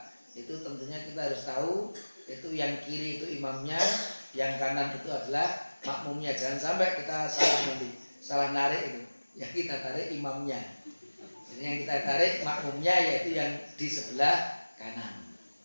itu tentunya kita harus tahu itu yang kiri itu imamnya, yang kanan itu adalah makmumnya. Jangan sampai kita salah narik itu. Yang kita tarik imamnya. Jadi yang kita tarik makmumnya, yaitu yang di sebelah kanan.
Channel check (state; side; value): inverted; both; correlation -1.00